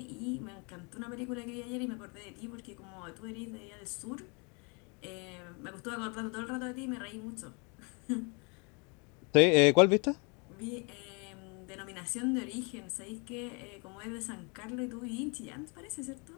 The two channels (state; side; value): quieter; right; 32.7 dB